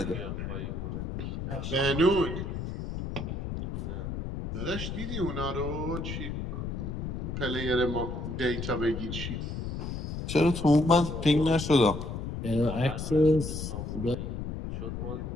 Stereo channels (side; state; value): left; noise; rumble, 5 dB below the sound